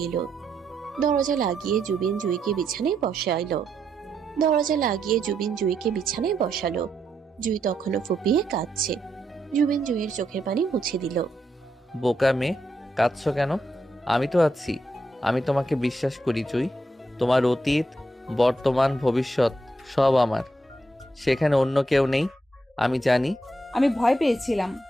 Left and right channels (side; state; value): both; normal; correlation 0.80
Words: এলো। দরজা লাগিয়ে জুবিন জুইকে বিছানায় বসালো। জুই তখনও ফুপিয়ে কাঁদছে। জুবিন জুইয়ের চোখের পানি মুছে দিল। বোকা মেয়ে, কাঁদছো কেন? আমি তো আছি, আমি তোমাকে বিশ্বাস করি জুই। তোমার অতীত, বর্তমান, ভবিষ্যৎ সব আমার, সেখানে অন্য কেউ নেই, আমি জানি। আমি ভয় পেয়েছিলাম,